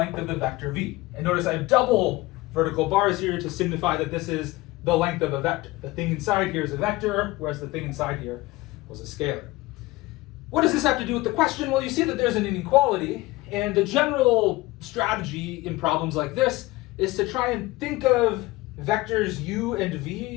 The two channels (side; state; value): right; quieter; 20.0 dB